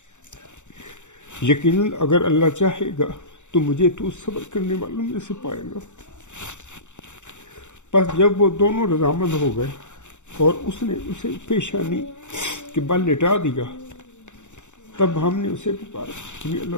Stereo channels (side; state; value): right; late; 0.84 ms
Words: یقیناً اگر اللہ چاہے گا تو مجھے تو صبر کرنے والوں میں سے پائے گا۔ پس جب وہ دونوں رضامند ہو گئے اور اس نے اسے پیشانی کے بل لٹا دیا، تب ہم نے اسے پکارا، یعنی